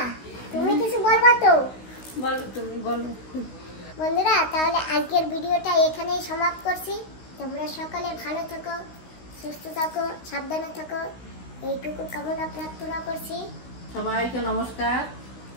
তুমি কিছু বলবা তো? বলো, তুমি বলো। বন্ধুরা, তাহলে আজকের ভিডিওটা এখানেই সমাপ্ত করছি। তোমরা সকালে ভালো থাকো, সুস্থ থাকো, সাবধানে থাকো, এইটুকু কামনা প্রার্থনা করছি। সবাইকে নমস্কার,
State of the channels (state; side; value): late; right; 16 ms